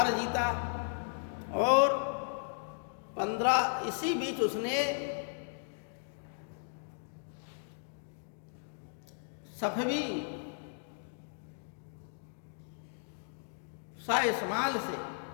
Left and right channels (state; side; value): silent; right; digital silence